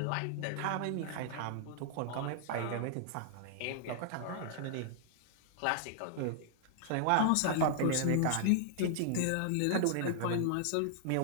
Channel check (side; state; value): both; different; correlation -0.01